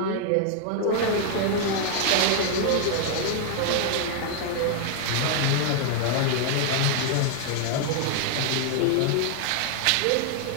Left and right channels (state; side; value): different; both; correlation 0.00